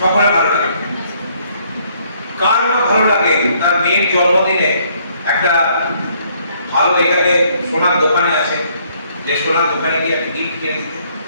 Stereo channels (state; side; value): inverted; both; correlation -0.66